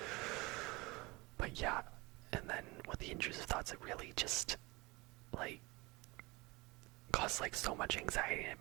But yeah, and then with the intrusive thoughts, it really just like caused like so much anxiety, and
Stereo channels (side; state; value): left; quieter; 24.1 dB